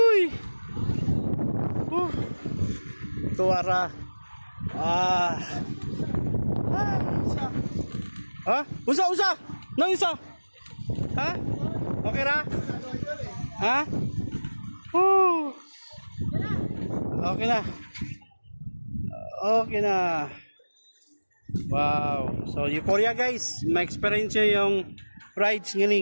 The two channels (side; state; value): both; inverted; correlation -1.00